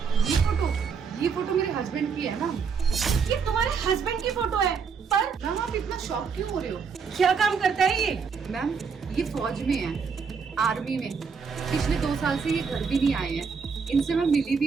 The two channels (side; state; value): left; quieter; 5.9 dB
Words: ये फोटो मेरे हस्बैंड की है ना। ये तुम्हारे हस्बैंड की फोटो है, पर मैम आप इतना शॉक क्यों हो रहे हो? क्या काम करता है ये? मैम ये फौज में है, आर्मी में। पिछले 2 साल से ये घर भी नहीं आए हैं, इनसे मैं मिली